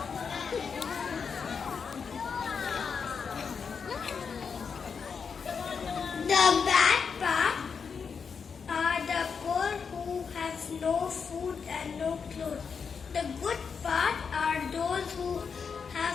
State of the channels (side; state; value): right; quieter; 6.0 dB